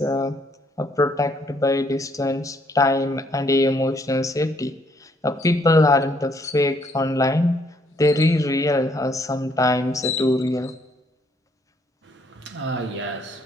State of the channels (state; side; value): normal; both; correlation 0.68